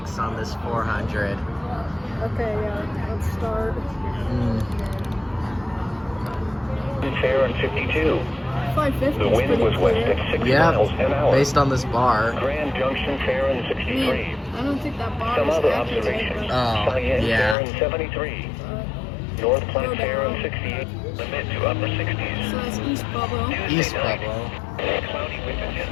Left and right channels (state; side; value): drops out; right; at 17.6 s